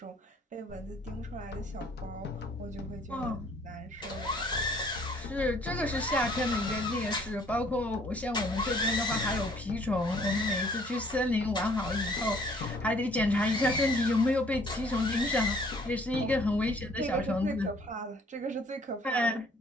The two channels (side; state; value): both; normal; correlation 0.59